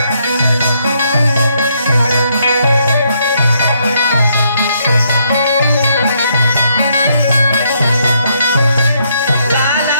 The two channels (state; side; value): inverted; both; correlation -0.73